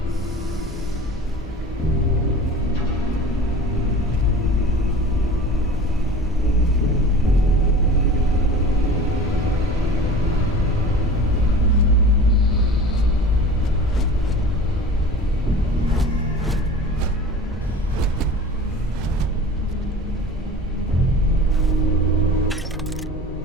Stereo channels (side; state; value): both; normal; correlation 0.38